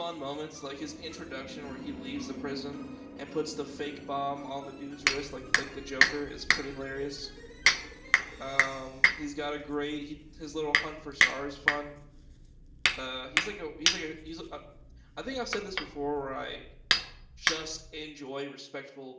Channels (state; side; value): identical; both; correlation 1.00